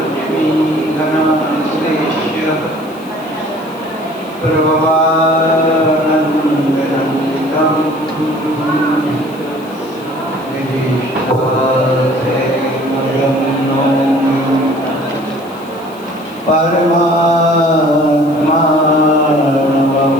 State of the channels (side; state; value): left; noise; hiss, 24 dB below the sound